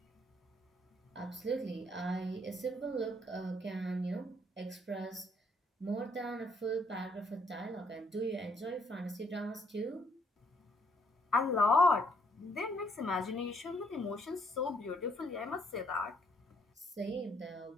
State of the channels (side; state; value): both; normal; correlation 0.68